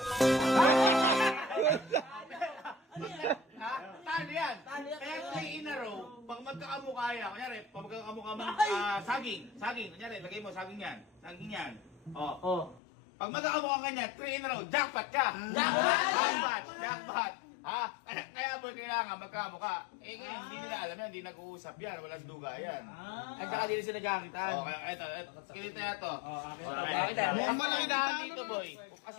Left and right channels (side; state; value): right; drops out; at 12.8 s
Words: Ha? Talo yan. Kaya 3 in a row, pag magkakamukha yan, kunyari, pag magkakamukha man, saging. Kunyari, lagay mo, saging yan. Saging yan. Oh. Pag magkakamukha ka niyan, 3 in a row, jackpot ka! Jackpot! Ha? Kaya boy, kailangan magkamukha. Eh ngayon, hindi nila alam yan, hindi nag-uusap yan, walang duga yan. At saka din sila nagkakitaan. Kaya ito, kinito na to. Mukhang malaki ng talo dito, na. boy.